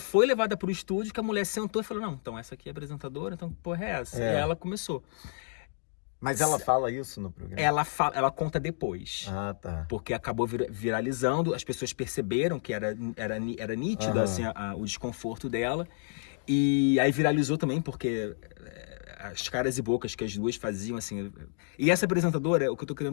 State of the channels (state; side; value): silent; right; digital silence